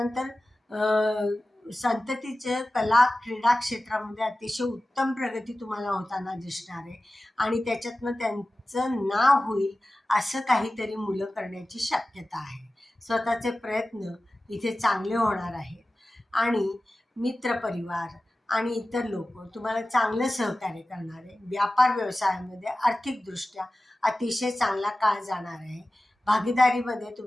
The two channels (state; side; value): normal; both; correlation 0.96